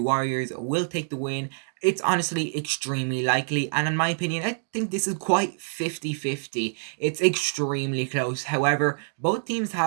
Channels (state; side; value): silent; left; digital silence